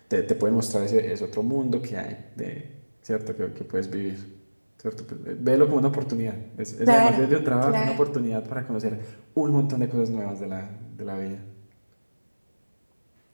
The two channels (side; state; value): both; inverted; correlation -1.00